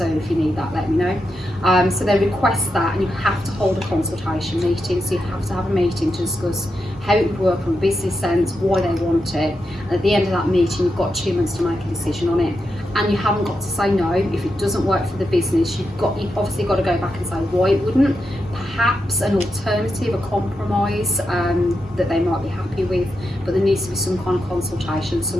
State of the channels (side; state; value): both; normal; correlation 0.86